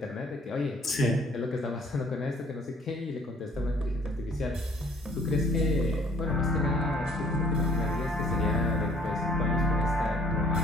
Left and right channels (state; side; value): normal; both; correlation 0.59